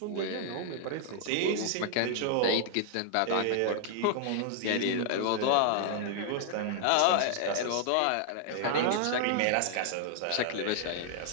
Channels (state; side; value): different; both; correlation -0.01